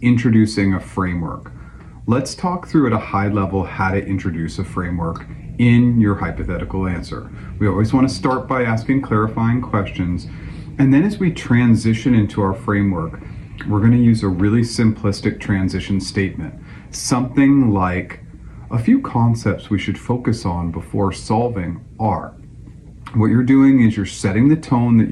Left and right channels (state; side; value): identical; both; correlation 1.00